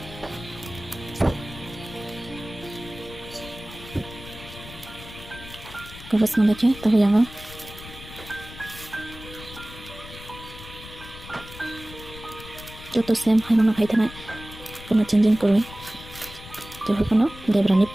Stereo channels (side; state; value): left; noise; rumble, 15 dB below the sound